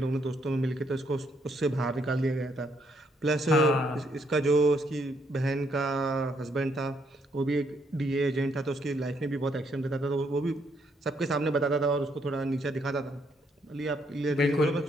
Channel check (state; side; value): normal; both; correlation 0.73